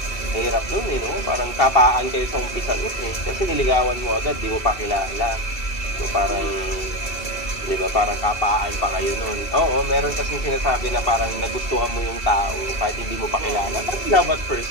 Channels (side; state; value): right; late; 2.7 ms